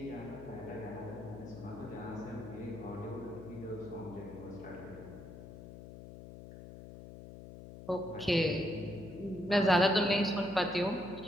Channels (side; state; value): left; noise; hum, 13 dB below the sound